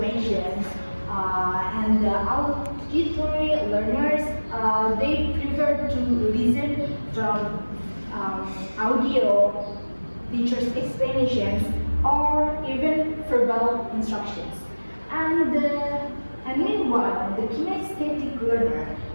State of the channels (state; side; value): inverted; both; correlation -1.00